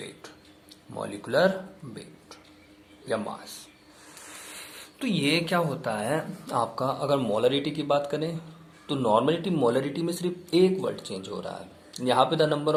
मॉलिकुलर वेट या मास। तो ये क्या होता है आपका, अगर मोलरिटी की बात करें तो नॉर्मलिटी मोलरिटी में सिर्फ एक वर्ड चेंज हो रहा है, यहाँ पे the number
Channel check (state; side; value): identical; both; correlation 1.00